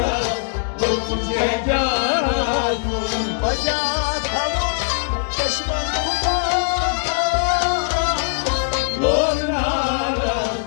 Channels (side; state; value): right; silent; digital silence